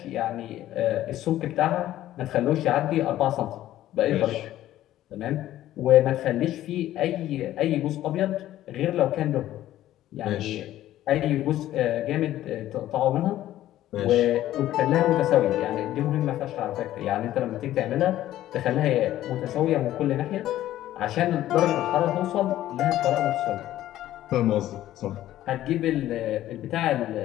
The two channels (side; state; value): right; quieter; 13.6 dB